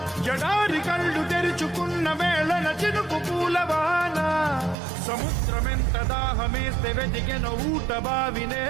జడారి కళ్ళు తెరుచుకున్న వేళన చినుకు పూలవాన సముద్రమెంత దాహమేస్తే వెతికెన ఊట బావినే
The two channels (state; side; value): drops out; left; at 4.8 s